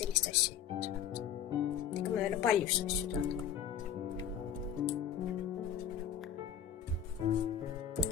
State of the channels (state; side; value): quieter; right; 8.8 dB